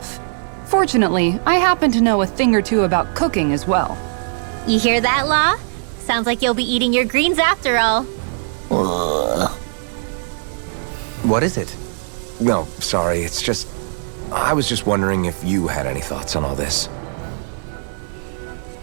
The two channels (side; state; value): left; silent; 62 dB below the other